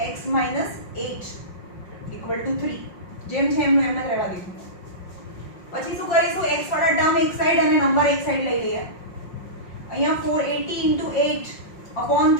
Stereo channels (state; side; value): late; right; 5.6 ms